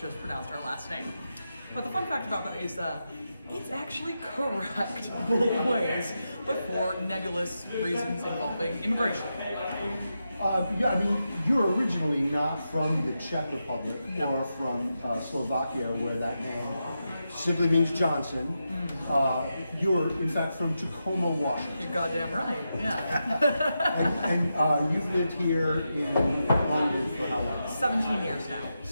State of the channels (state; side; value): inverted; both; correlation -0.88